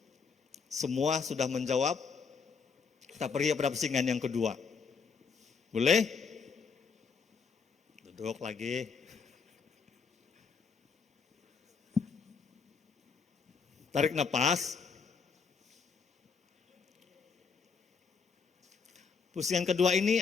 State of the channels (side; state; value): right; quieter; 5.5 dB